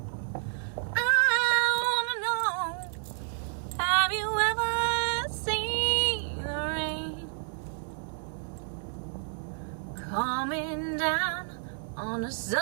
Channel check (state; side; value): silent; left; 58 dB below the other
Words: I wanna know, have you ever seen the rain coming down on a